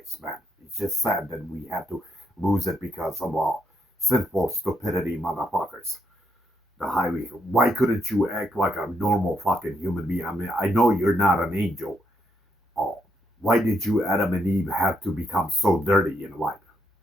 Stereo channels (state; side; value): normal; both; correlation 0.77